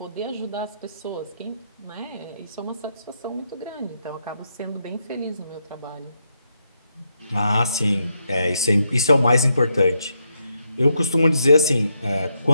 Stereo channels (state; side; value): inverted; both; correlation -0.81